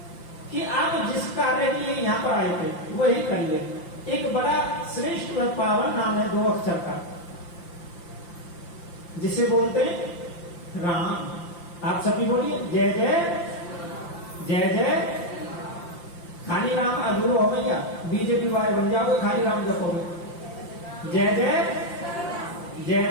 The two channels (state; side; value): late; right; 5.8 ms